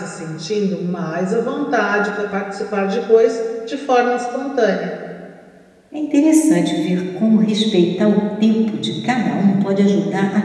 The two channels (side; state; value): both; identical; correlation 1.00